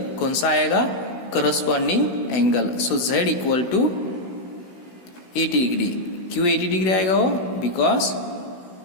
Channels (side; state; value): right; late; 16 ms